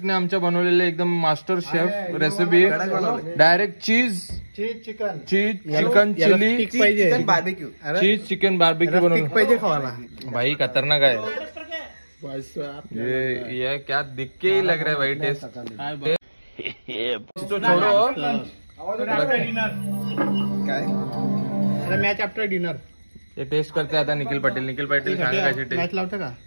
आमच्या बनवलेले एकदम master chef recipe direct cheese chicken chicken chilli barbecue cheese chicken barbecue बनवलं पाहिजे खावाला भाई खतरनाक है ये क्या दिख के ही लग रहा है भाई टेस्ट तो छोड़ो मॅच आफ्टर डिनर ये टेस्ट करते आता निखिल पाटील सांगा कशी मॅच टेस्ट लावतं का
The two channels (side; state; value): both; inverted; correlation -1.00